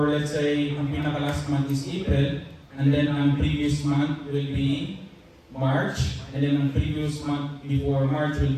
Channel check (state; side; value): identical; both; correlation 1.00